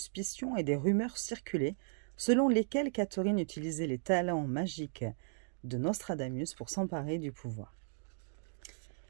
et des rumeurs circulaient selon lesquelles Catherine utilisait les talents magiques de Nostradamus pour s'emparer du pouvoir.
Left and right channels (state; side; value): silent; left; digital silence